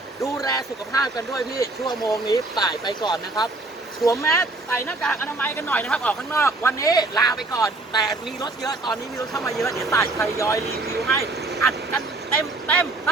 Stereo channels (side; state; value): left; quieter; 3.0 dB